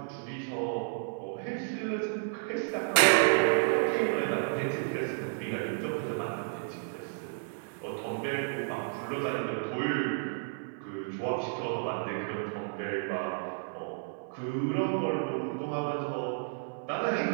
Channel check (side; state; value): left; silent; 57 dB below the other